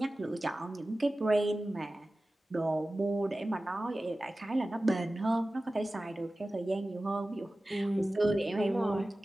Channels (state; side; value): normal; both; correlation 0.96